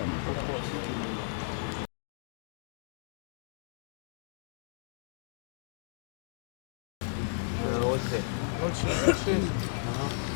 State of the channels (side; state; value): right; silent; digital silence